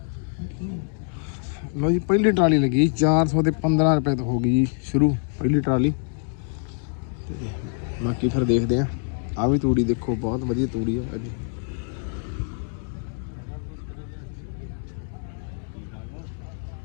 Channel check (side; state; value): right; silent; 62 dB below the other